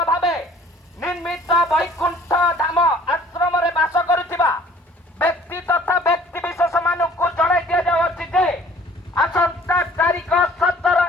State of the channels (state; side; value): normal; both; correlation 0.54